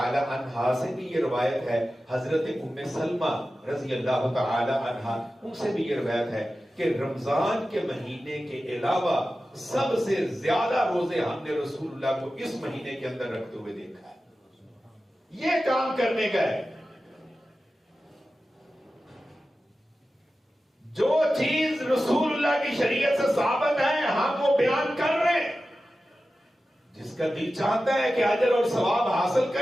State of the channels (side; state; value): both; normal; correlation 0.94